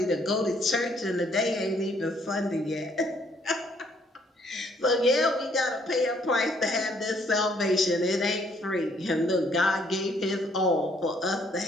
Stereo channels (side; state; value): both; normal; correlation 0.66